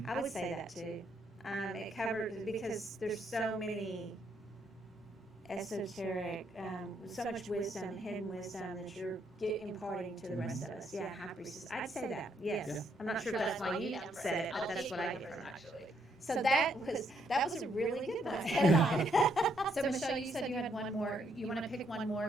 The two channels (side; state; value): both; normal; correlation 0.73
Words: I would say that too. It covers because there's so many esoteric, so much wisdom, hidden wisdom that you're imparting to the rest of us. Yeah, High Priestess. I'd say that. Yes. Yeah. I'm not sure if that's why you said it, but that's what I get from it. actually. So that was a really good one. So Michelle, you said you had one more. You want to pick one